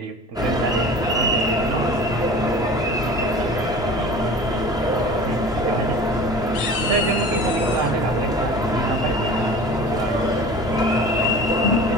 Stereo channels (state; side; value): normal; both; correlation 0.39